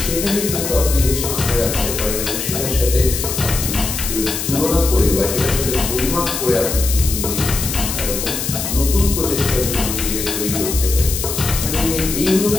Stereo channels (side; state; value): left; noise; hiss, 4 dB below the sound